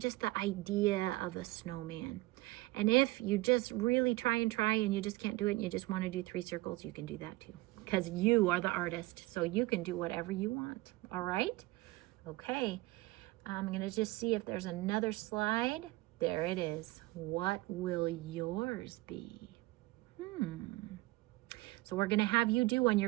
the idea of a snowman. And if you just really try and you just can't do it and you just want to do 3 circles, you can do that too, because you are the artist, so you can do whatever you want. All right? Okay. I'm going to just see if there's another slide. There it is. What will yours be? So we're going to have you do one.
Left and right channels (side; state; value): left; quieter; 20.0 dB